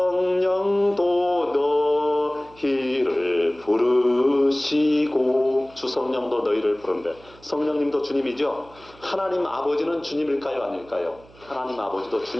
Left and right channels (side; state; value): right; noise; hum, 25 dB below the sound